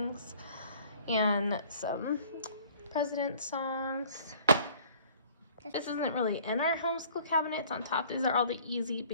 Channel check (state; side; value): inverted; both; correlation -0.53